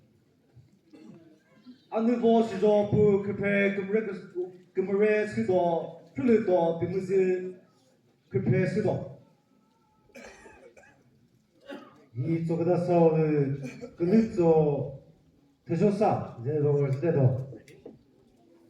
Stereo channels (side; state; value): both; identical; correlation 1.00